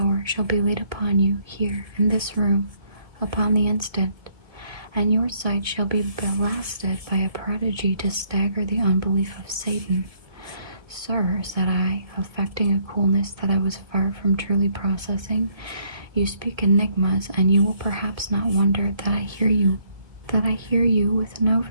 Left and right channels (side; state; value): left; late; 1.7 ms